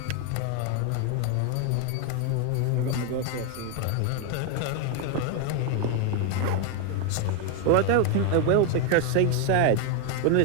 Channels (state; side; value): different; both; correlation 0.01